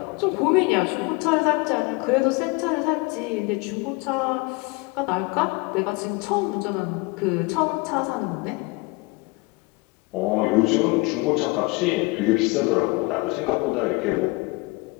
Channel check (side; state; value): right; quieter; 25.8 dB